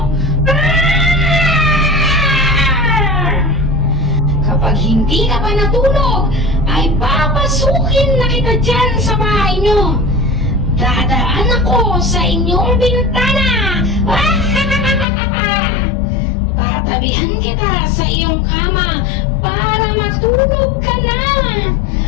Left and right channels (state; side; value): drops out; right; at 15.1 s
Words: Kapag hindi ka pa natulog, ay papasukin na kita dyan sa bahay nyo. Dadaan ako sa inyong bintana. Tatabihan kita sa iyong kama para matulog ka na.